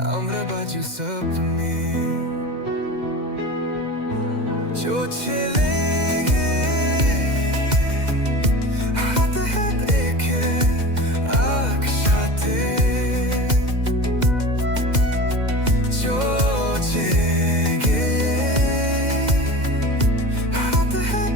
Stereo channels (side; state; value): left; late; 2.0 ms